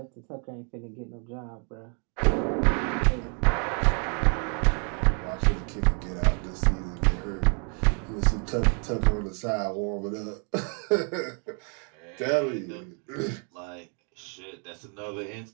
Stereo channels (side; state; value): left; quieter; 39.1 dB